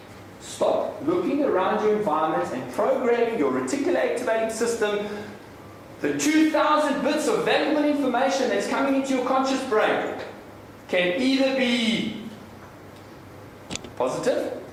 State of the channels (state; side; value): identical; both; correlation 1.00